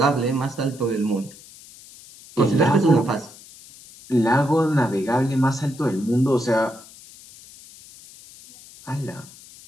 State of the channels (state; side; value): noise; left; hiss, 21 dB below the sound